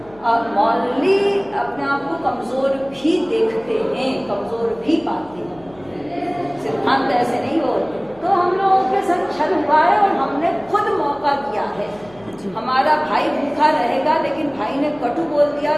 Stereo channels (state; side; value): noise; left; hum, 25 dB below the sound